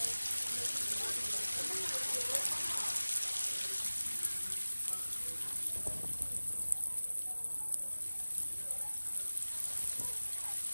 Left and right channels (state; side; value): inverted; both; correlation -1.00